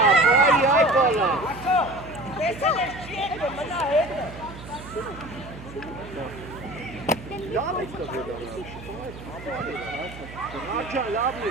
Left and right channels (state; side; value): noise; right; hum, 15 dB below the sound